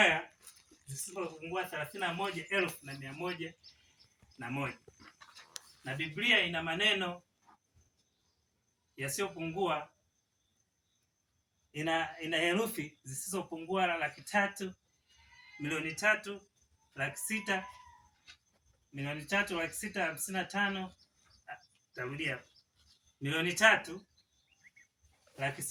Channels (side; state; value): both; identical; correlation 1.00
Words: zisizopungua 31,101. Na Biblia ina maneno yasiyopungua ina herufi zisizopungua 300,000, 300,000, 300,000, 300,655. Tarudia.